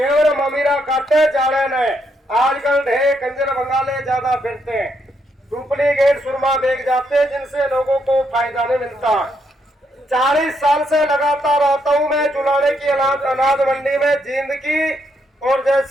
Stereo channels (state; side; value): normal; both; correlation 0.77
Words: ममीरा काटे जाड़े ने। आजकल ढेर कंजर बंगाले ज्यादा फिरते हैं, डुप्लीकेट सुरमा बेच जाते, जिनसे लोगों को फायदा नहीं मिलता। 40 साल से लगातार आता हूँ मैं चुलाने की अनाज मंडी में, जींद की और